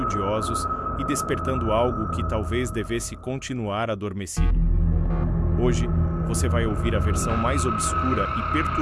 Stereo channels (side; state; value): both; identical; correlation 1.00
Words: e despertando algo que talvez devesse continuar adormecido. Hoje, você vai ouvir a versão mais obscura e